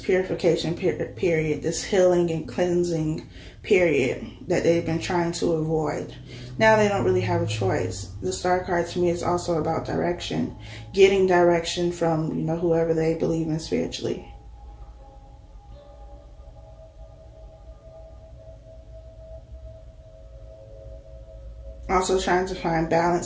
period, this healing and cleansing period that they've been trying to avoid. Now they don't really have a choice. The Star card to me is also about direction, getting direction from, you know, whoever they believe in spiritually. Also trying to find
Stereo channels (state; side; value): identical; both; correlation 1.00